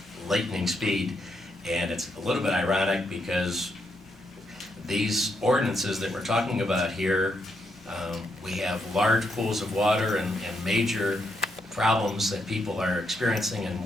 lightning speed. And it's a little bit ironic because these ordinances that we're talking about here, we have large pools of water and major problems that people are experiencing, and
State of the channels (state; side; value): normal; both; correlation 0.79